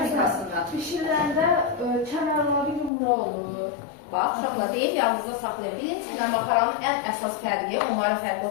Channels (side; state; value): right; drops out; at 2.9 s